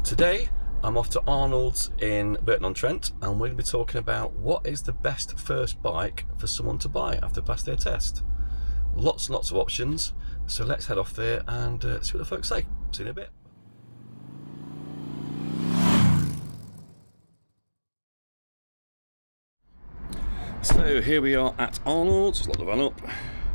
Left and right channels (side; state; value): both; inverted; correlation -1.00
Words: Today I'm off to Arnold's in Burton-on-Trent, and we're going to be talking about what is the best first bike for someone to buy after passing their test. Lots and lots of options, so let's head off there and see what the folks say. See you in a bit. So here we are at Arnold's. Lock the van up.